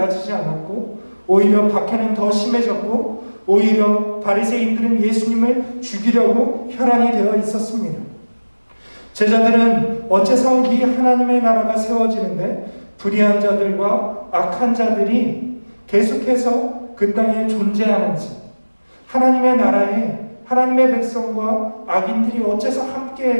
않았고 오히려 박해는 더 심해졌고 오히려 바리새인들은 예수님을 죽이려고 혈안이 되어 있었습니다. 제자들은 어째서 이 하나님의 나라가 세워지는데 불의한 자들과 악한 자들이 계속해서 그 땅에 존재하는지, 하나님의 나라에 하나님의 백성과 악인들이 어째서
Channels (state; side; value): inverted; both; correlation -1.00